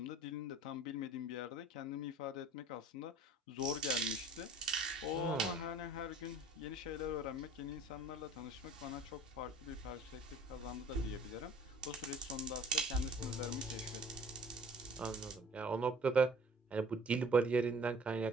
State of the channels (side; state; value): both; normal; correlation 0.49